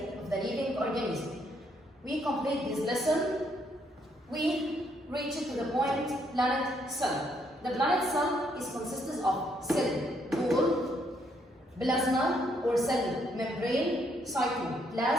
living organism. We complete this lesson. We reach to the point planet cell. The planet cell is consists of cell wall, plasma or cell membrane,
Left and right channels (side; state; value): both; normal; correlation 0.72